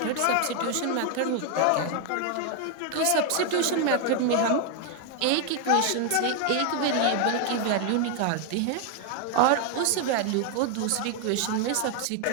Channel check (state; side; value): different; both; correlation 0.00